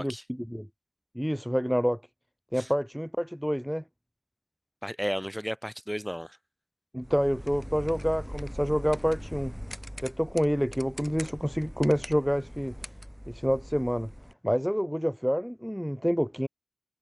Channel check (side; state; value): both; identical; correlation 1.00